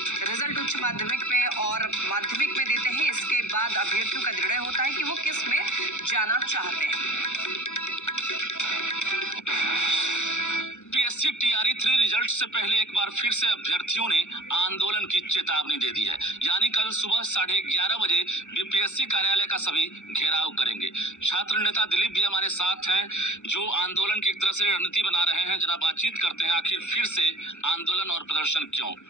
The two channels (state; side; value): late; right; 0.84 ms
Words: रिजल्ट उच्च माध्यमिक में और माध्यमिक में देते हैं। इसके बाद अभ्यर्थियों का निर्णय होता है कि वो किस में जाना चाहते हैं। बीपीएससी टीआरई 3 रिजल्ट से पहले एक बार फिर से अभ्यर्थियों ने आंदोलन की चेतावनी दे दी है। यानी कल सुबह 11:30 बजे बीपीएससी कार्यालय का सभी घेराव करेंगे। छात्र नेता दिलीप भी हमारे साथ हैं, जो आंदोलन की एक तरह से रणनीति बना रहे हैं। जरा बातचीत करते हैं, आखिर फिर से आंदोलन और प्रदर्शन क्यों?